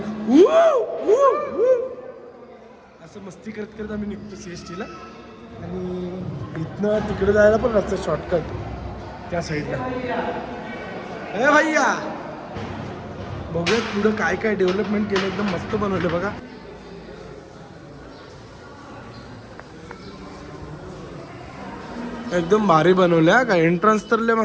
असं मस्ती करत करत आम्ही निघतो CSTला. आणि इथनं तिकडे जायला पण रस्ता शॉर्टकट त्या साईडला. अरे भैया बघूयात पुढं काय काय डेव्हलपमेंट केलं, एकदम मस्त बनवलं बघा. एकदम भारी बनवलं का. एंट्रन्स तर लय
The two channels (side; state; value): both; identical; correlation 1.00